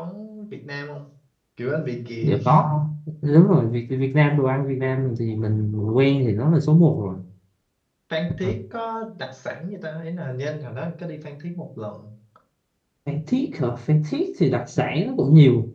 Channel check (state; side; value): identical; both; correlation 1.00